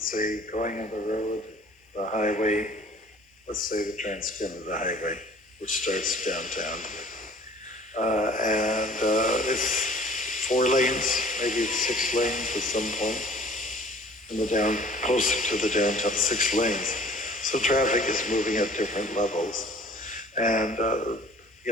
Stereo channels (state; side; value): normal; both; correlation 0.50